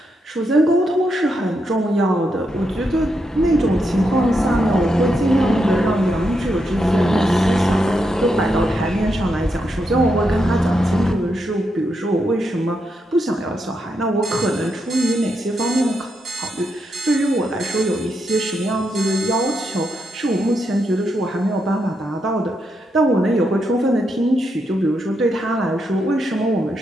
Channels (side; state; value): both; normal; correlation 0.82